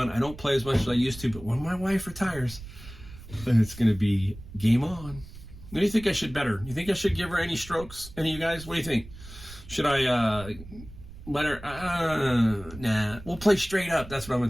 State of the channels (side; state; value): right; noise; rumble, 16 dB below the sound